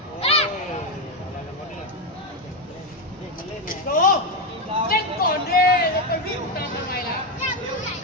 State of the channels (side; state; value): both; normal; correlation 0.08